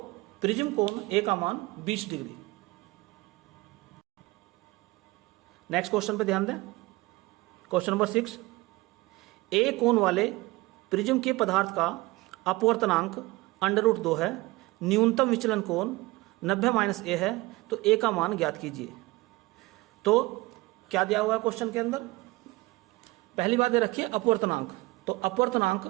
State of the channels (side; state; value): left; quieter; 21.5 dB